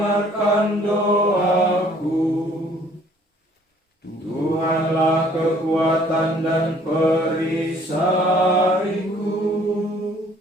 doaku. Tuhanlah kekuatan dan perisaiku.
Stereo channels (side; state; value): both; normal; correlation 0.58